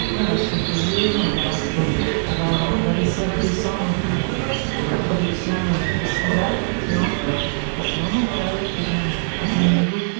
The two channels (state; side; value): silent; left; 65 dB below the other